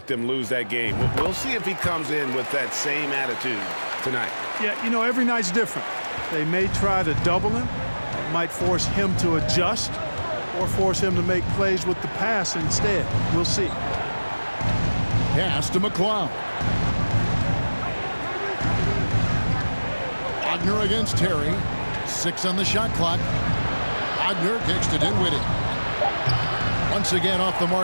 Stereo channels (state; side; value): inverted; both; correlation -1.00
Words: them lose that game. We'll see if he comes in with that same attitude tonight. Yeah, you know, every night's different. They may try to double him, might force him to adjust, or force him to make plays with the pass instead. We'll see. Pass to McCloud. Wagner against Terry. 6 on the shot clock. Wagner kicks to Dinwiddie. Once again off the